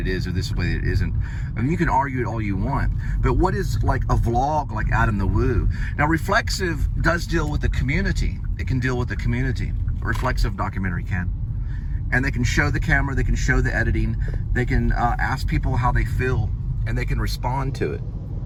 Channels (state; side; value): identical; both; correlation 1.00